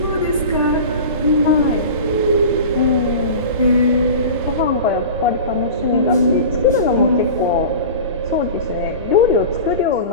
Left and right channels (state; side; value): inverted; both; correlation -0.34